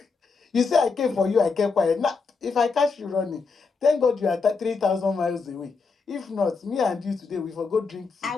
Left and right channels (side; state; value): right; quieter; 4.7 dB